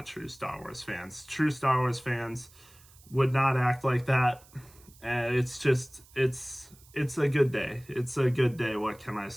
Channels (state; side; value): noise; right; hiss, 25 dB below the sound